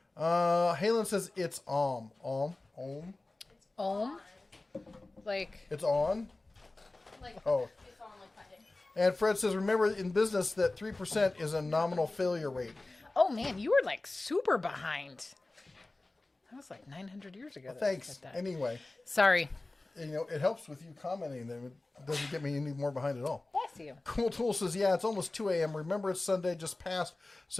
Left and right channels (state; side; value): quieter; right; 3.0 dB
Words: Halen says it's Om. Like it's on. Like, Oh. it's on like Monday. And Fred says, remember in business that 3% is a nominal failure rate. oh man, you were like super behind. That was like 900 years ago. that I Thanks. said that. Anyway, Sorry. it helps with you commenting. Then it doesn't get me any more behind at all. Bless you. Cool Tool says, yeah, it's almost 2 a.m. Remember, it's Sunday just passed.